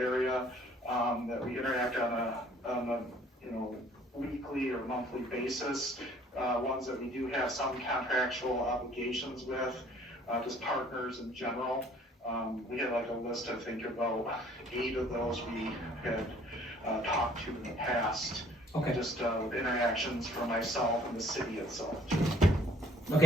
area that we interact on a weekly or monthly basis. Ones that we do have some contractual obligations with, just partners in general. We had like a list, I think about 8 of those we had talked to in the past. Okay. Just with interactions for myself and the city itself.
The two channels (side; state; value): both; normal; correlation 0.57